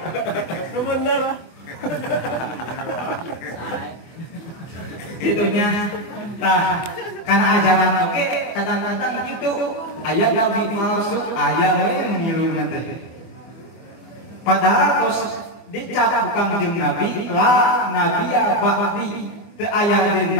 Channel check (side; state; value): right; late; 24 ms